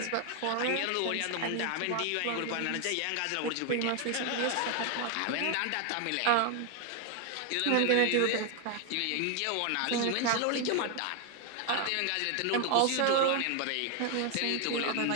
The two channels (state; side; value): different; both; correlation 0.01